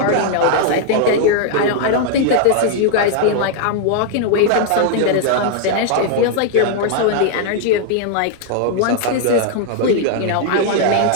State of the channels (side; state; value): both; different; correlation 0.00